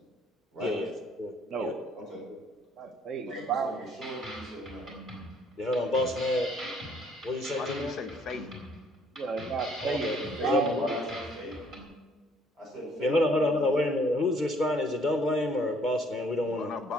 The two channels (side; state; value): both; normal; correlation 0.62